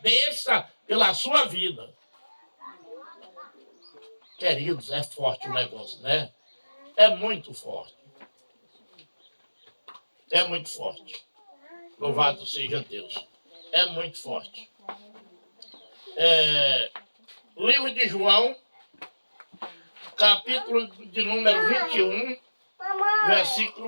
pela sua vida. Queridos, é forte o negócio, né? É muito forte. É muito forte. Louvado seja Deus. É muito forte. Livro de João, capítulo de número 21,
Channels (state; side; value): inverted; both; correlation -1.00